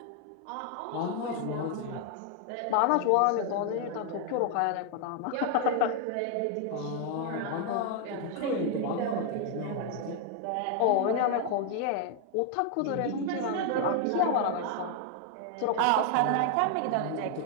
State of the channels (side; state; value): both; different; correlation 0.00